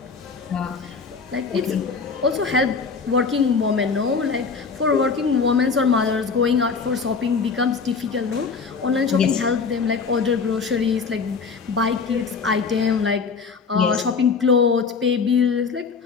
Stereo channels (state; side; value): quieter; right; 5.2 dB